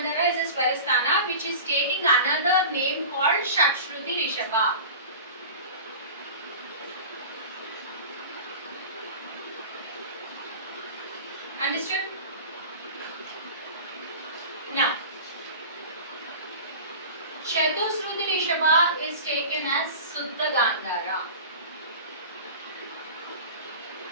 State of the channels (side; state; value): both; inverted; correlation -0.35